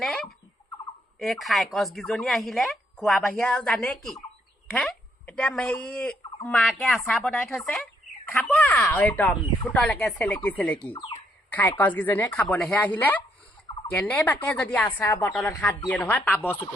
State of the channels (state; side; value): normal; both; correlation 0.73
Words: এই খাই কছকেইজনী আহিলে খোৱা বাহিৰে আৰু জানে কি হে এতিয়া হেৰি মাকে আচাৰ বনাই থৈছে খাব আৰু একদম ফুটলৈকে চেলেকি খাই কছকেইজনীয়ে খাবলৈহে আহিলে কেনেবাকে যদি আচাৰ বটলত হাত দিয়ে নহয় পাব